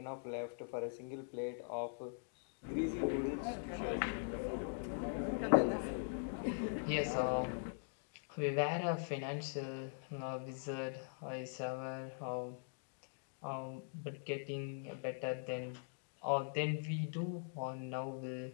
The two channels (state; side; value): silent; right; digital silence